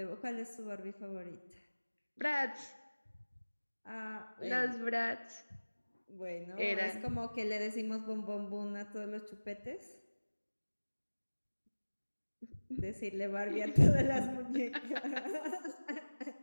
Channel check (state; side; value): inverted; both; correlation -1.00